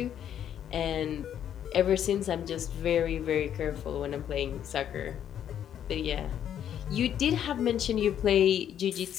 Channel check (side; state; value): right; quieter; 9.8 dB